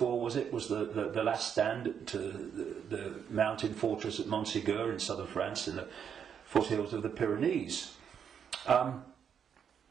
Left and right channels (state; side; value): quieter; left; 7.8 dB